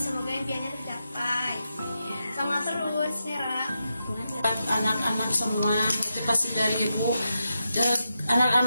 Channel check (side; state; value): both; inverted; correlation -0.87